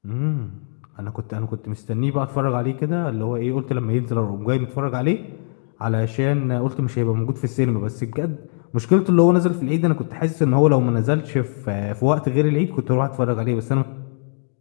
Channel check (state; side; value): silent; right; digital silence